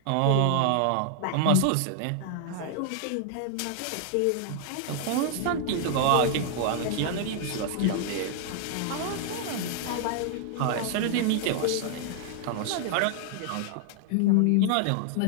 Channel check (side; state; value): both; different; correlation 0.00